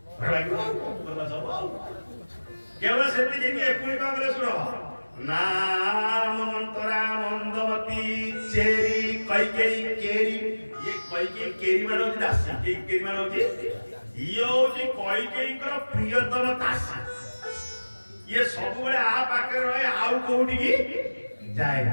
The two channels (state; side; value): inverted; both; correlation -1.00